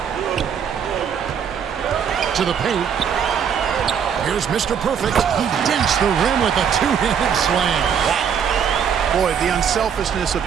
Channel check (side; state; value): left; quieter; 7.6 dB